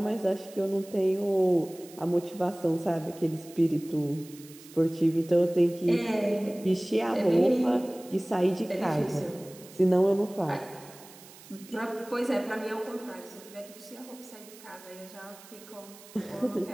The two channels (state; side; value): noise; right; hiss, 20 dB below the sound